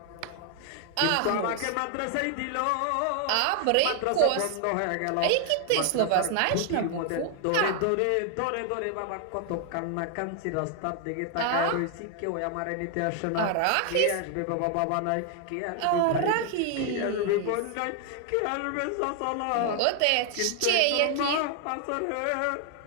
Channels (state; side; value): different; both; correlation 0.00